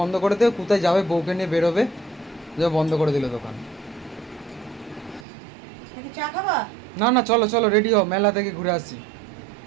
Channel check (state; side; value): drops out; left; at 5.2 s